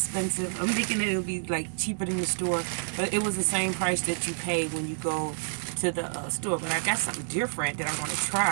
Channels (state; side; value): silent; left; digital silence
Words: I'm thinking that it would be like cheaper than the store, but it was the same price that you pay when you go to the store. But I got something different that I want to